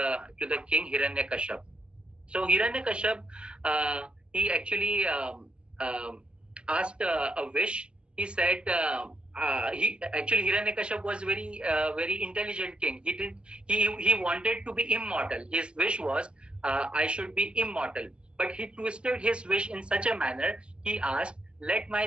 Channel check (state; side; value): late; left; 0.053 ms